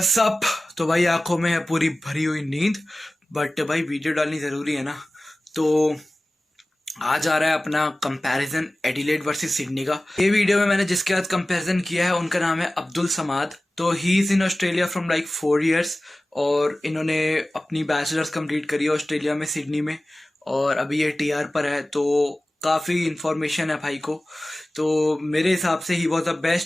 up. तो भाई आंखों में है पूरी भरी हुई नींद, बट भाई वीडियो डालनी जरूरी है ना। तो आज आ रहा है अपना कंपैरिजन एडिलेड वर्सेस सिडनी का। ये वीडियो में मैंने जिसके साथ कंपैरिजन किया है उनका नाम है अब्दुल समाद। तो he is in Australia from like 4 years और इन्होंने अपनी बैचलर्स कंप्लीट करी है ऑस्ट्रेलिया में, सिडनी में, और अभी ये टीआर पर है। तो काफ़ी इंफॉर्मेशन है भाई को। तो मेरे हिसाब से he was the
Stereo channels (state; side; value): normal; both; correlation 0.96